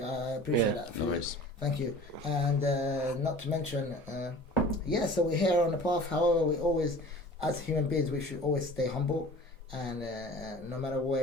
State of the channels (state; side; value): normal; both; correlation 0.43